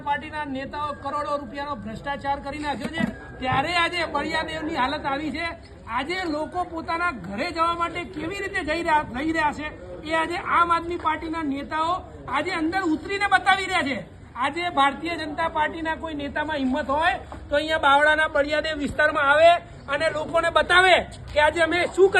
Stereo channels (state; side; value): identical; both; correlation 1.00